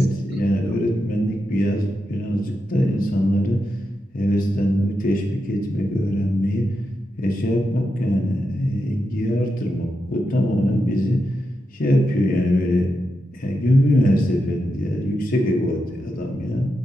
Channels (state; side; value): normal; both; correlation 0.87